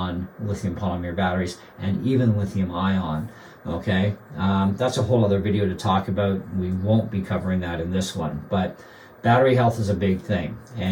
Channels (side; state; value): both; identical; correlation 1.00